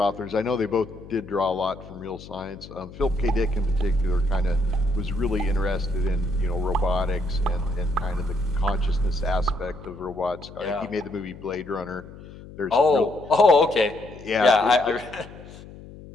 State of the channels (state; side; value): noise; left; hum, 17 dB below the sound